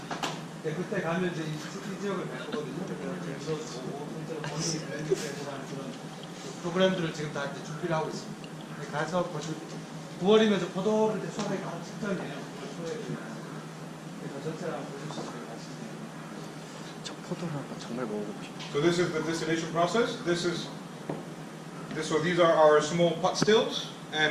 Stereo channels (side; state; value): both; identical; correlation 1.00